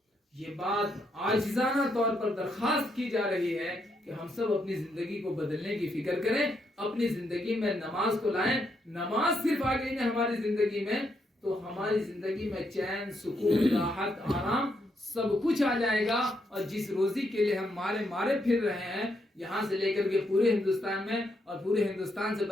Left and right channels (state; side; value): normal; both; correlation 0.78